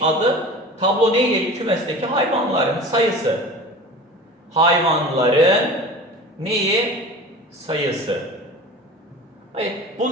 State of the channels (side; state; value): both; normal; correlation 0.37